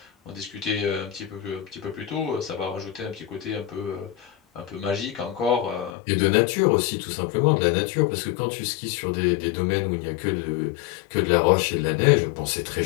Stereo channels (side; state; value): right; drops out; at 6.0 s